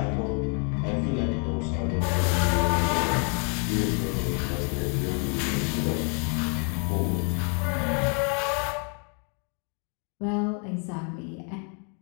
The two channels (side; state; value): right; quieter; 39.6 dB